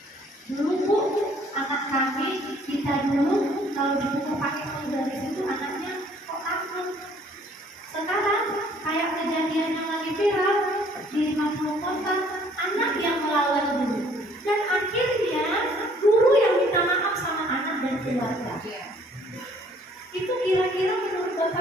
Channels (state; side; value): normal; both; correlation 0.59